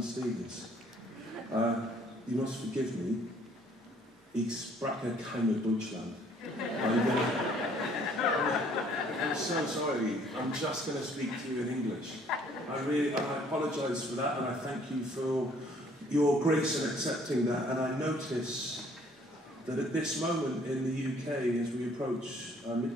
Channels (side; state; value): both; normal; correlation 0.60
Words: Stevens. You must forgive me. Ich spreche keine Deutschland. I'm so sorry. I'm just going to speak to you in English. I apologise for that, and I thank you for your grace in accepting that. And I notice that at this moment in the UK, as we approach